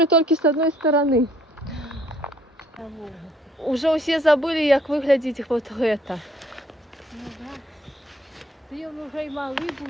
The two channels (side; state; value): both; normal; correlation 0.63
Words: только с одной стороны. Уже все забыли, как выглядит вот это. Ну, да. Ти вже й малий